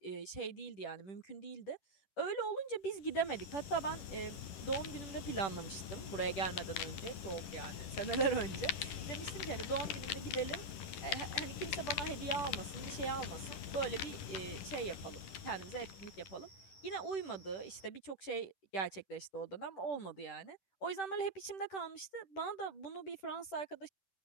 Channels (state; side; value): late; right; 11 ms